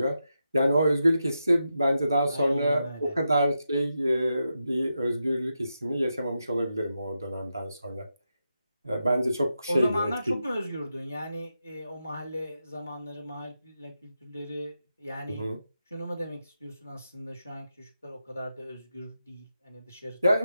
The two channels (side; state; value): both; inverted; correlation -0.87